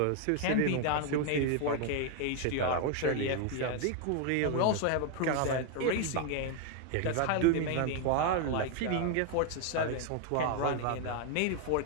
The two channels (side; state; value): both; different; correlation 0.01